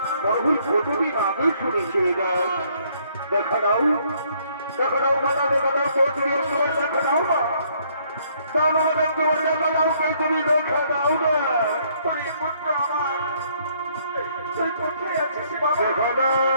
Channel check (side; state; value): both; inverted; correlation -0.66